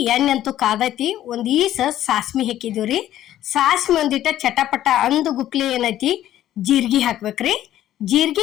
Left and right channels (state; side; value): quieter; right; 12.7 dB